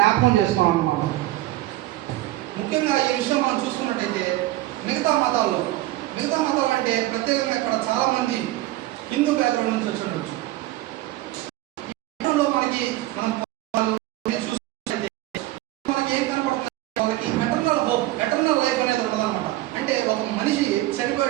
చేసుకున్నాం అన్నమాట. ముఖ్యంగా ఈ విషయం మనం చూసుకున్నట్టయితే మిగతా మతాలు అంటే ప్రత్యేకంగా ఇక్కడ చాలా మంది హిందూ బ్యాక్గ్రౌండ్ నుంచి వచ్చి ఉండొచ్చు. మనకి ఏం కనపడుతుంది, వాళ్ళకి ఎటర్నల్ లైఫ్ అనేది ఉండదన్నమాట. అంటే ఒక మనిషి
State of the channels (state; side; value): quieter; left; 16.9 dB